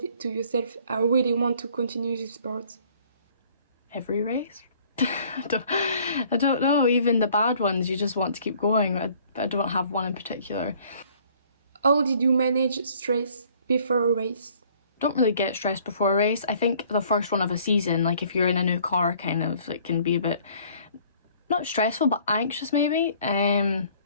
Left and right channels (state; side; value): inverted; both; correlation -0.57